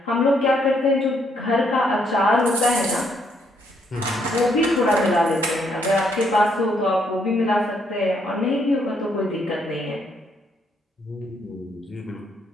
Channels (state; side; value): normal; both; correlation 0.72